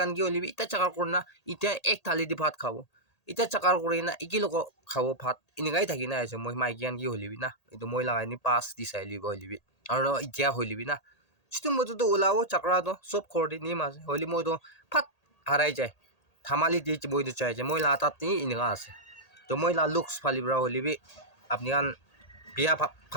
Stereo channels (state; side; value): late; right; 1.8 ms